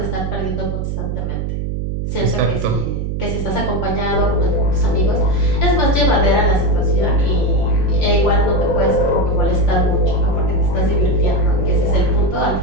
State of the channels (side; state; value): right; noise; hum, 2 dB below the sound